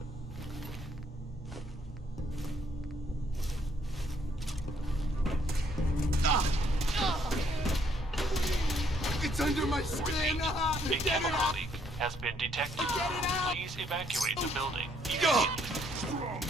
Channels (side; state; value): both; normal; correlation 0.69